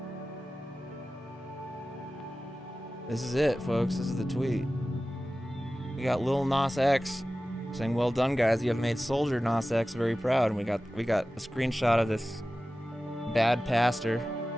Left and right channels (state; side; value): normal; both; correlation 0.95